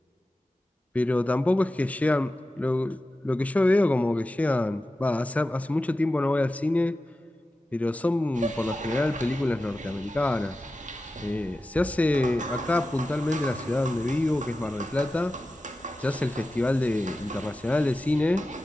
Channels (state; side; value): normal; both; correlation 0.93